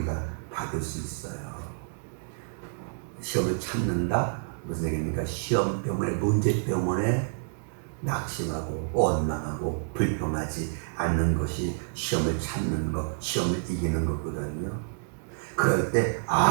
받을 수 있어요. 시험을 참는다? 무슨 얘기입니까? 시험 때문에, 문제 때문에 낙심하고 원망하고 불평하지 않는 것이 시험을 참는 것, 시험을 이기는 거거든요. 그럴 때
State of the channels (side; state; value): left; silent; digital silence